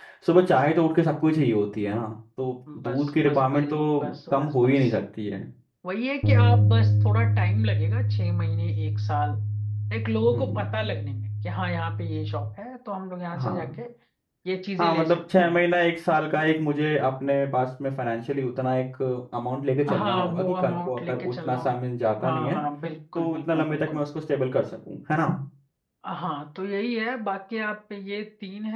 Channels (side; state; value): both; identical; correlation 1.00